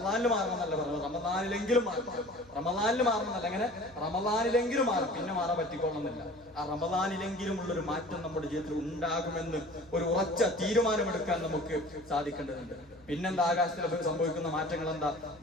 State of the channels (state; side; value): noise; left; hum, 26 dB below the sound